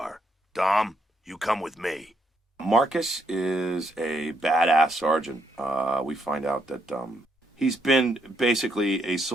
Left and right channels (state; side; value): normal; both; correlation 0.75